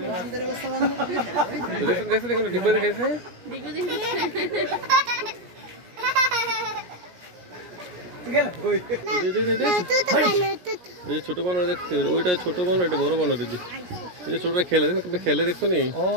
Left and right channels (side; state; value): left; late; 17 ms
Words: দেখছো দেখো ডিব্বা দেখাইছে ছোট বানর দেখতে ওইটা ছোট বানর এটা বড় বানর দিদি এই যে ছোটরা খেলে দেখো খেলে দেখছো নি